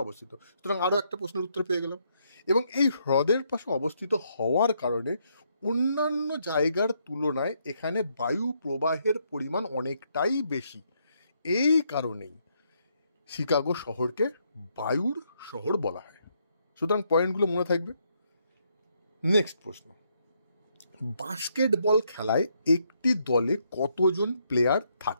অবস্থিত। সুতরাং আরও একটা প্রশ্নের উত্তর পেয়ে গেলাম। এবং এই হ্রদের পাশে অবস্থিত হওয়ার কারণে অন্যান্য জায়গার তুলনায় এখানে বায়ু প্রবাহের পরিমাণ অনেকটাই বেশি। এই কারণেই শিকাগো শহরকে বায়ুর শহর বলা হয়। সুতরাং পয়েন্টগুলো মনে থাকবে। নেক্সট প্রশ্ন, বাস্কেটবল খেলায় একটি দলে কতজন প্লেয়ার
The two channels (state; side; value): inverted; both; correlation -0.75